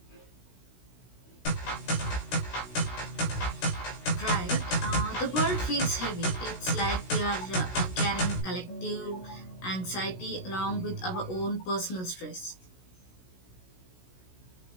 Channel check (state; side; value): late; right; 16 ms